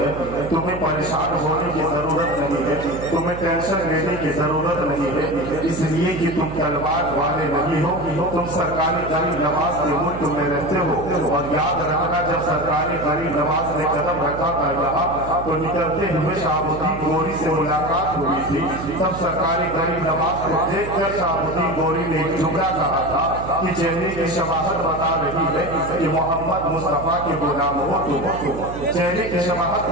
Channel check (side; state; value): right; noise; hum, 10 dB below the sound